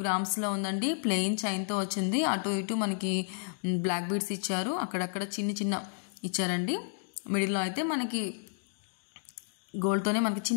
గ్రామ్స్లో ఉందండి. ప్లెయిన్ చైన్తో వచ్చింది. అటు ఇటు మనకి బ్లాక్ బీడ్స్ ఇచ్చారు. అక్కడక్కడ చిన్న చిన్న ఇచ్చారండి. మిడిల్లో అయితే మనకి గోల్డ్తోనే మనకి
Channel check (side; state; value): right; silent; digital silence